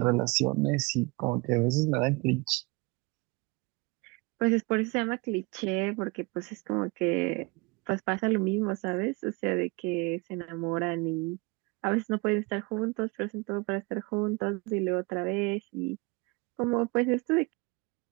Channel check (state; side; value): quieter; left; 26.8 dB